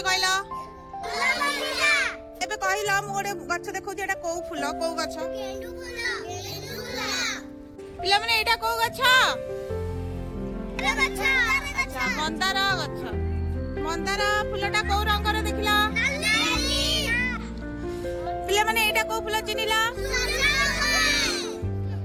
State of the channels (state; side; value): identical; both; correlation 1.00